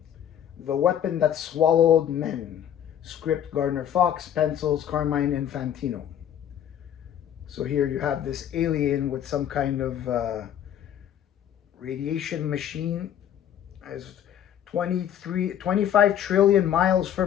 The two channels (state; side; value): quieter; right; 10.0 dB